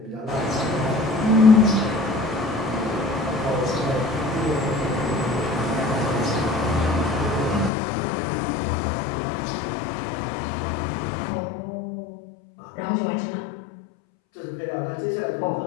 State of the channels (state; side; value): drops out; right; at 7.7 s